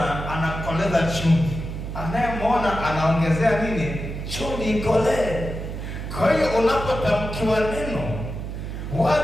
anakoleza chumvi, anayemuona anaongezea nini? Chumvi ikolee. Kwa hiyo unapotamkiwa neno,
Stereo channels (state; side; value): noise; right; hum, 6 dB below the sound